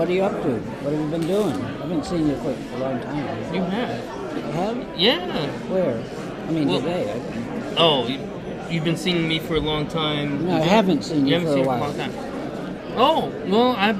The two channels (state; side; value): identical; both; correlation 1.00